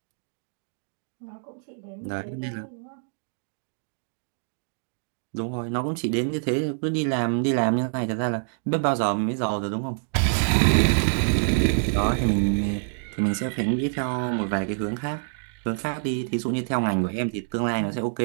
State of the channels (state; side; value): silent; left; digital silence